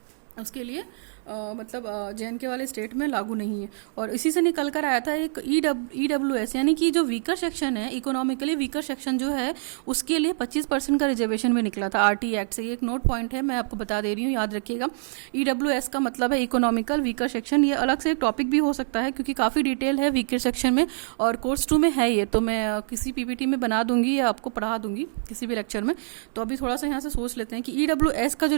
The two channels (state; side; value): silent; left; digital silence